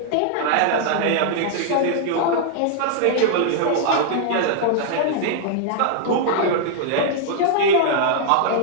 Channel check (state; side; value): different; both; correlation -0.01